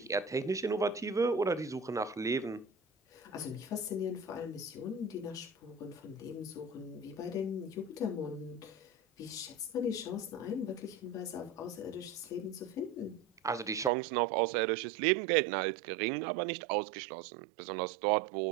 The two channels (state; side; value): drops out; left; at 13.9 s